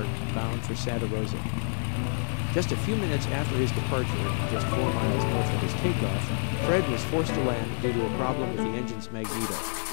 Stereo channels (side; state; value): right; silent; digital silence